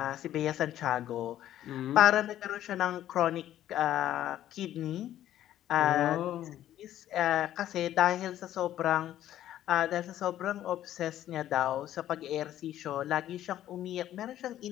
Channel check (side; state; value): right; quieter; 12.3 dB